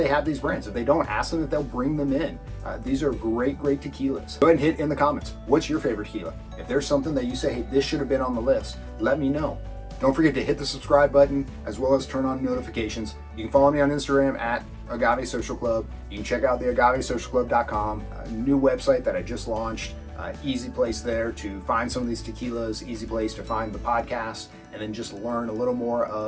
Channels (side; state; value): both; identical; correlation 1.00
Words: have these brands. If they don't, ask them if they'll bring them in. These are great tequilas. Go ahead and hit in the comments. What's your favorite tequila? If there's something that you say, hey, this should have been on the list, let me know. Don't forget to hit the subscribe button as well as turn on notifications. You can follow me on Instagram at Agave Social Club. You can check out the AgaveSocialClub.com, a new website that I just launched. Easy place there to find some of these tequilas, easy place to find the podcast, and then just learn a little more